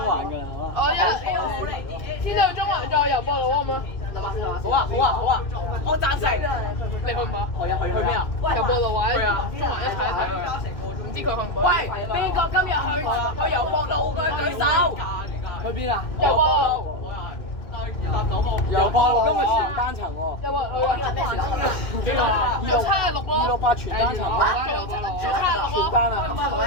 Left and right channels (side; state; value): right; late; 2.6 ms